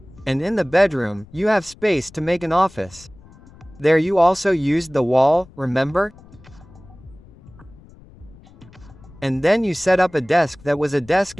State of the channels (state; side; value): noise; left; rumble, 23 dB below the sound